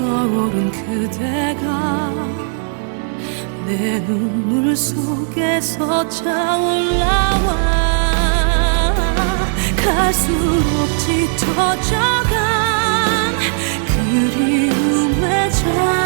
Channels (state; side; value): silent; left; 62 dB below the other